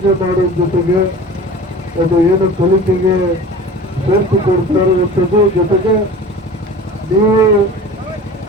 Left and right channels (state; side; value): normal; both; correlation 0.39